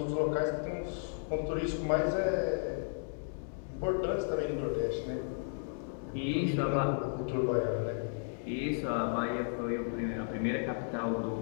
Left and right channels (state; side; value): silent; right; digital silence